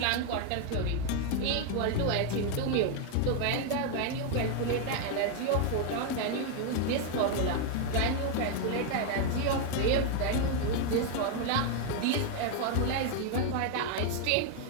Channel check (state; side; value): different; both; correlation 0.01